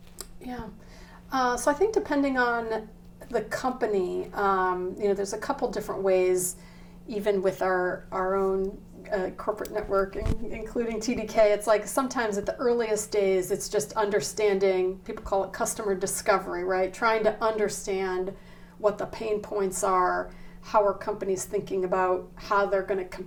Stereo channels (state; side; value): identical; both; correlation 1.00